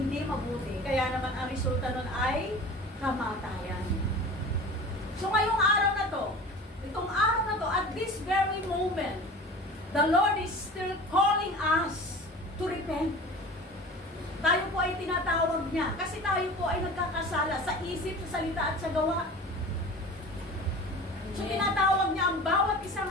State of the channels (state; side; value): normal; both; correlation 0.38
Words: mabuti. Kaya naman ang resulta nun ay kamatayan. So ngayong araw na to, itong araw na to, at this very moment, the Lord is still calling us to repent. Tayo po ay tinatawag niya kasi tayo po ay nagkakasala sa isip, sa salita at sa gawa. So tinatawag niya ang bawat isa